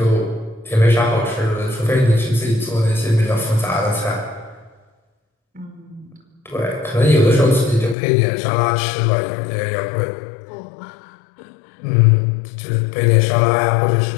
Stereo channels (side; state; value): right; drops out; at 8.0 s